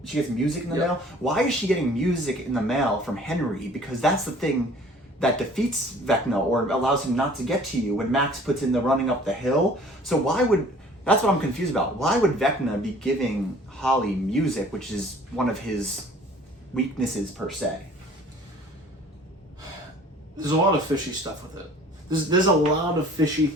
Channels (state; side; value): normal; both; correlation 0.51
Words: She gets music in the mail. Why is she getting music in the mail from Henry? Because that's the thing that defeats Vecna or allows him not to get to you when Max puts in the running up the hill. So that's what I'm confused about. Why would Vecna be giving Holly music, which is one of his weaknesses per se? There's a lot of fishy stuff with it. There's a lot of fishy